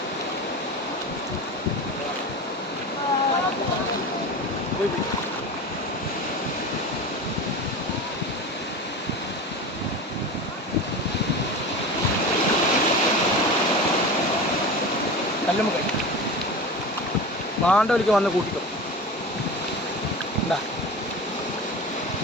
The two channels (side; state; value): both; normal; correlation 0.30